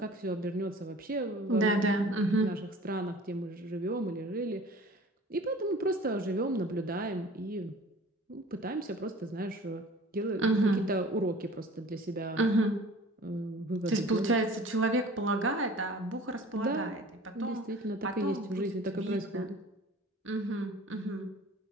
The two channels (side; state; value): both; normal; correlation 0.45